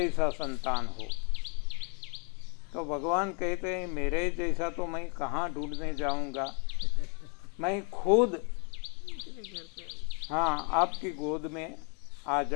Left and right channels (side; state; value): right; quieter; 37.6 dB